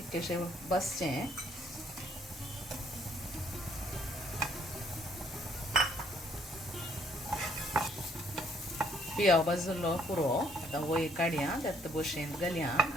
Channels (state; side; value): normal; both; correlation 0.66